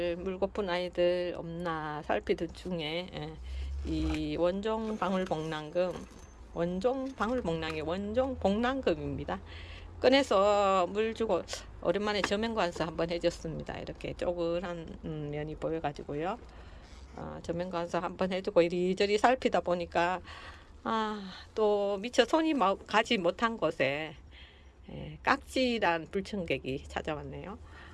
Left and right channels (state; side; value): identical; both; correlation 1.00